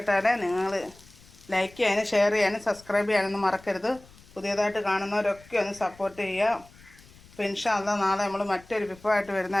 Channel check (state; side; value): noise; left; rumble, 24 dB below the sound